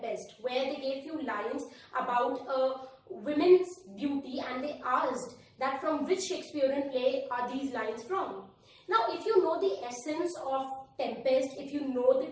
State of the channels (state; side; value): identical; both; correlation 1.00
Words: where they gave few lines about a women's beauty, and they asked that from which Shakespearean play are these lines from. Now, if you know the essence of Tempest, if you know the